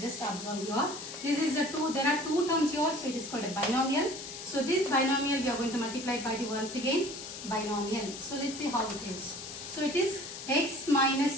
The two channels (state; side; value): noise; left; hiss, 10 dB below the sound